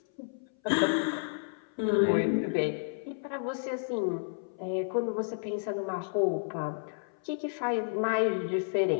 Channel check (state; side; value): silent; right; 57 dB below the other